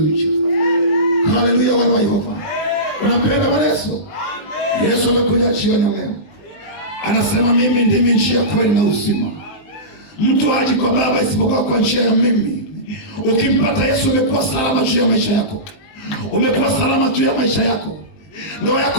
haleluya. Wana wa Yehova, unapenda Bwana Yesu? Yesu anakuja jioni leo, anasema mimi ndimi njia, kweli na uzima. Mtu haji kwa Baba isipokuwa kwa njia ya mimi. Ukimpata Yesu umekuwa salama juu ya maisha yako. Umekuwa salama juu ya maisha yako. Ndoa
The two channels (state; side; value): late; right; 19 ms